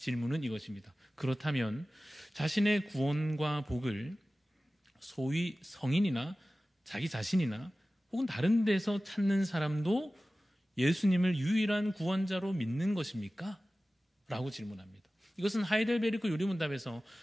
이것입니다. 그렇다면 자신의 구원과 복을 소위 성인이나 자기 자신이나 혹은 다른 데서 찾는 사람도 예수님을 유일한 구원자로 믿는 것입니까? 라고 질문합니다. 이것은 하이델베르크 요리문답에서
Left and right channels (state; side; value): normal; both; correlation 0.96